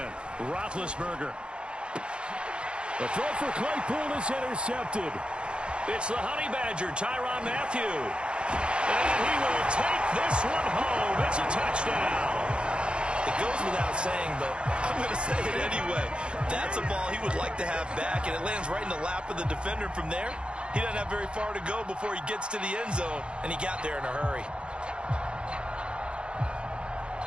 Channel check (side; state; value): left; late; 0.055 ms